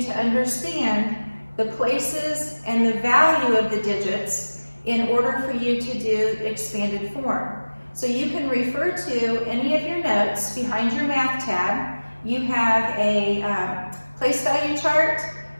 to understand the places and the value of the digits in order for you to do expanded form. So you can refer to any of your notes behind your math tab. You have a place value chart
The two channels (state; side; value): inverted; both; correlation -1.00